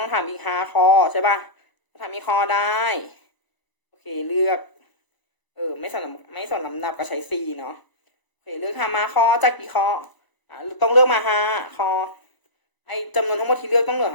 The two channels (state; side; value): late; right; 1.0 ms